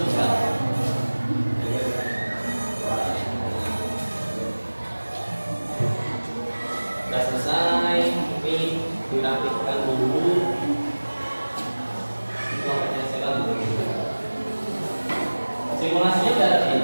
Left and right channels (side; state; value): both; inverted; correlation -1.00